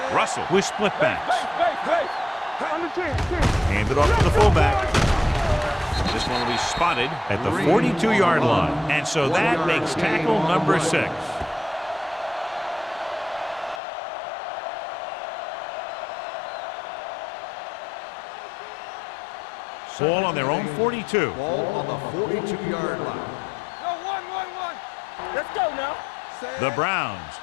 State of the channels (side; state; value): right; drops out; at 13.8 s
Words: Russell with split backs. Base. On the 10. Hand it off to the fullback. This one will be spotted at the 42-yard line. And so that makes tackle number 6. Ball on their own 42. Ball on the 42-yard line. No, 1. Let's go now. The Browns